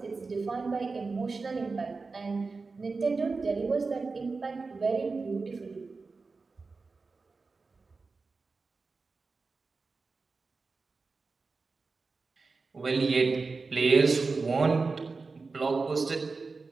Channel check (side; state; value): left; quieter; 4.1 dB